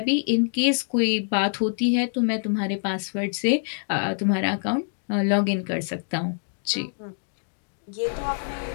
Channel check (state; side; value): silent; right; digital silence